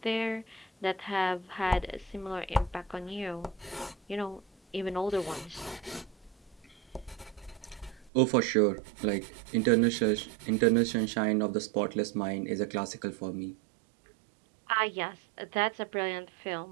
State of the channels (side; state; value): left; drops out; at 8.1 s